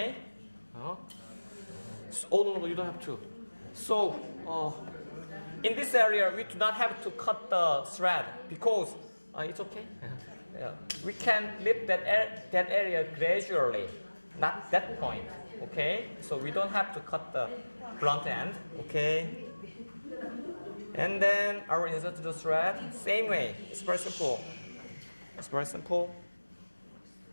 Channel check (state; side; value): inverted; both; correlation -1.00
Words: So, oh no, you don't have to. So, in this area, we do not have to cut the thread because it's okay. We can lift that area gradually, not that point. Okay, so we don't have to cut the blunt end. Okay, and then I will insert the thread same way. It's very simple. It's very simple.